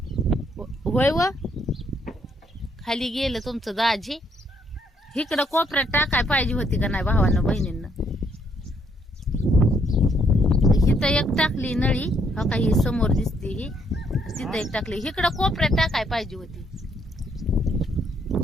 होय व खाली गेलं तुमचं दाजी. इकडं कोपऱ्यात टाकाय पाहिजे होती का नाही भावानं बहिणींना. इथं एक टाकली नळी हो का ही समोर दिसते ही. तिथं एक टाकली. इकडं कोपऱ्यात टाकाय पाहिजे होती.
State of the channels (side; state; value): both; normal; correlation 0.71